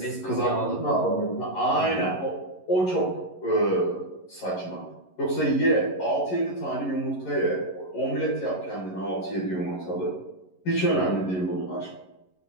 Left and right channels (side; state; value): right; late; 11 ms